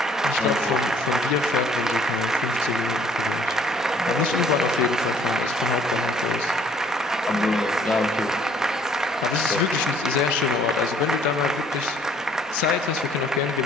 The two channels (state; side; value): normal; both; correlation 0.59